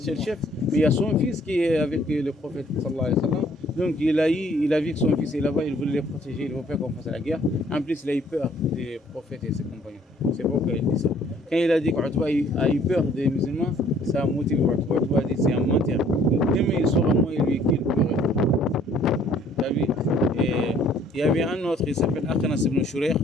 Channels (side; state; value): both; normal; correlation 0.59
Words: le chef, mais il y a son fils qui est avec le prophète sallallahu alayhi wa sallam. Donc il a vu que son fils est là-bas, il voulait les protéger, il ne veut pas qu'on fasse la guerre. En plus, il a eu peur des prophètes et ses compagnons. C'est pourquoi il dit ça. Quand il a dit qu'Utba a eu peur des musulmans, ça a motivé Utba. Utba a dit c'est un menteur. Demain il saura moi et lui qu'il pleurait. Et il y avait un autre, il s'appelle Akhnas ibn Shurayh.